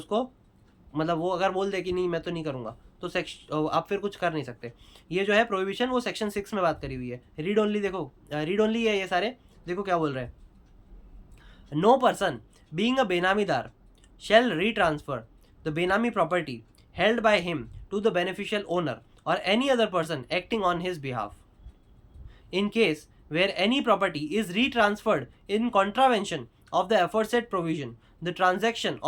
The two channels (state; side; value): identical; both; correlation 1.00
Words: मतलब वो अगर बोल दे कि नहीं मैं तो नहीं करूँगा, तो आप फिर कुछ कर नहीं सकते। ये जो है प्रोहिबिशन वो सेक्शन 6 में बात करी हुई है। रीड ओनली देखो, रीड ओनली है ये सारे। देखो क्या बोल रहे हैं, no person being a benamidar shall retransfer the benami property held by him to the beneficial owner or any other person acting on his behalf. In case where any property is retransferred in contravention of the aforesaid provision, the transaction